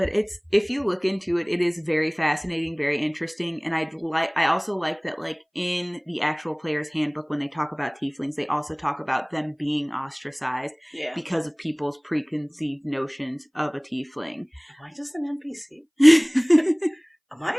if you look into it, it is very fascinating, very interesting, and I also like that in the actual player's handbook when they talk about tieflings, they also talk about them being ostracized because of people's preconceived notions of a tiefling. Am I just an NPC? Am I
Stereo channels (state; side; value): identical; both; correlation 1.00